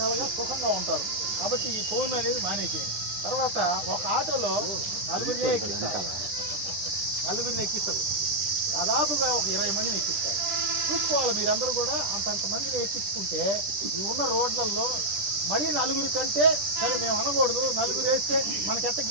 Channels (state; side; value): late; left; 10 ms